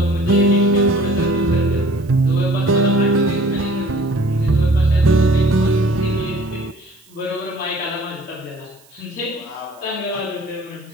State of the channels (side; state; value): right; noise; hiss, 29 dB below the sound